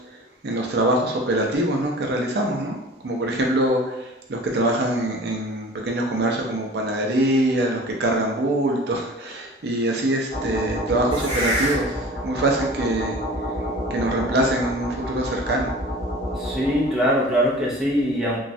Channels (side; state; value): both; normal; correlation 0.42